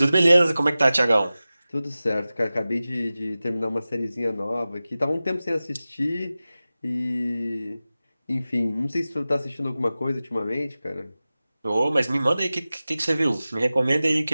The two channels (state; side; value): inverted; both; correlation -0.96